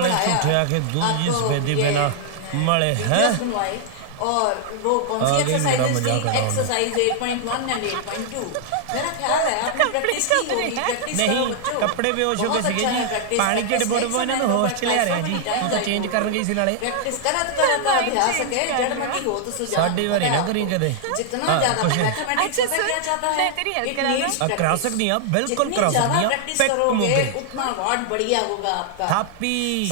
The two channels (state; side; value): different; both; correlation -0.01